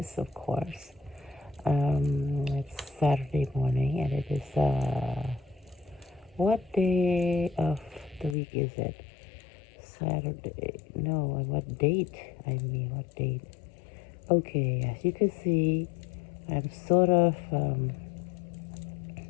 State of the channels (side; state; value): right; drops out; at 8.3 s